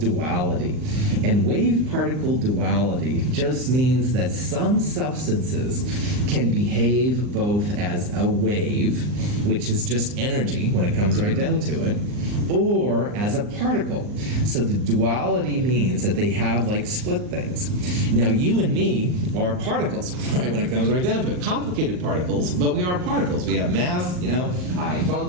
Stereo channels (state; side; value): late; left; 39 ms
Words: And wave-particle duality just means that some substances can behave both as a wave, which is just energy when it comes right down to it, or as a particle. So the duality means that they have like split things. Now you and me are particles, right, when it comes right down to it. Complicated particles, but we are particles. We have mass, I